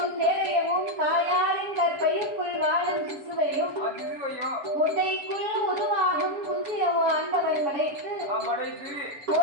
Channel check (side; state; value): left; late; 7.1 ms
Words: தேரையவும் தாயாரின் கற்பைக்குள் வாழும் சிசுவையும் முட்டைக்குள் உருவாகும் குஞ்சியவும் ஆண்டவன் படைத்து